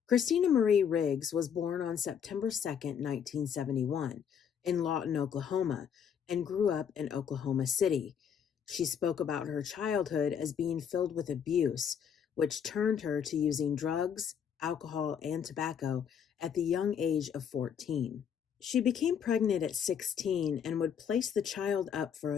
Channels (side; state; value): right; quieter; 7.8 dB